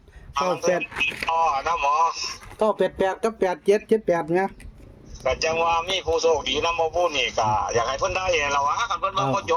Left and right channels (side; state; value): both; identical; correlation 1.00